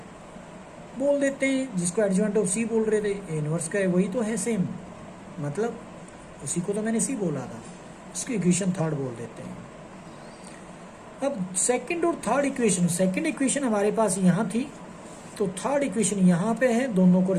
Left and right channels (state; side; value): identical; both; correlation 1.00